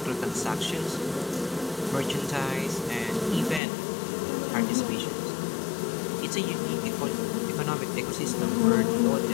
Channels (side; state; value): right; drops out; at 3.6 s